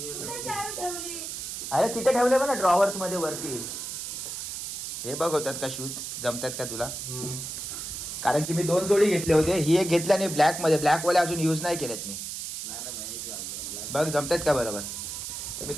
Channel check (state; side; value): noise; right; hiss, 6 dB below the sound